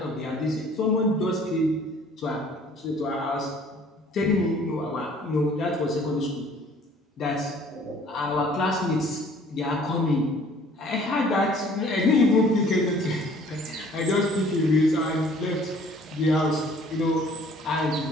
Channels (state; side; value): normal; both; correlation 0.55